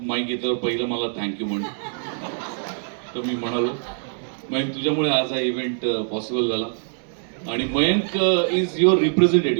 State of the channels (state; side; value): silent; left; 62 dB below the other